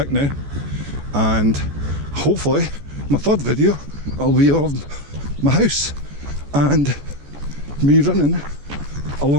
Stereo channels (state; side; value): late; left; 14 ms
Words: now, and hopefully my third video will be of my house and me running